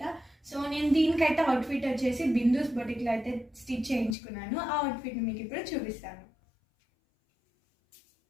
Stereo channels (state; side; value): drops out; right; at 4.2 s